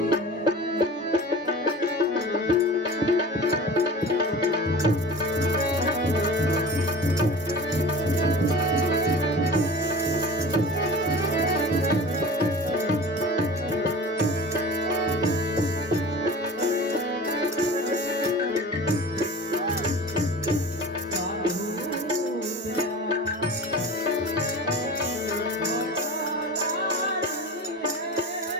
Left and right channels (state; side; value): normal; both; correlation 0.37